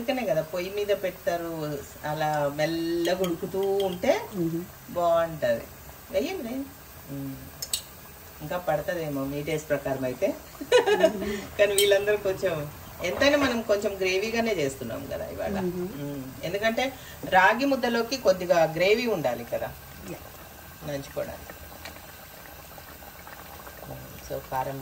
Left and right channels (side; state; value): both; identical; correlation 1.00